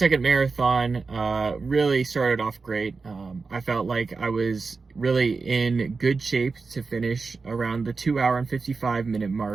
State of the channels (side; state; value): left; quieter; 4.4 dB